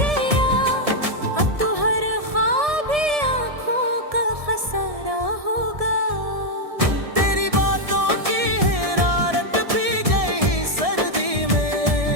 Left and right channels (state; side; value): late; left; 1.7 ms